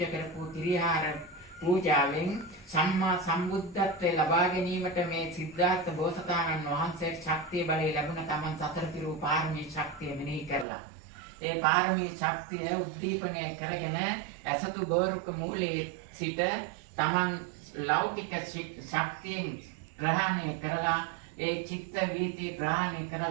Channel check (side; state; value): left; drops out; at 10.7 s